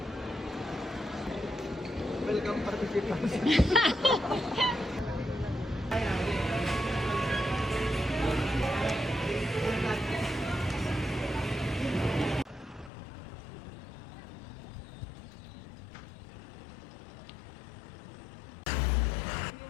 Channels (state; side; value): drops out; right; at 12.9 s